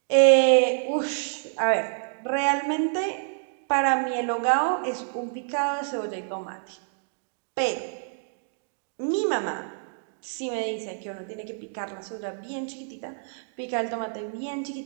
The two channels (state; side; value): silent; left; digital silence